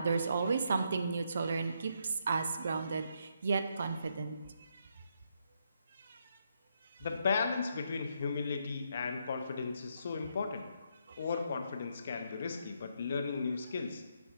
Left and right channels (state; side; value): inverted; both; correlation -0.77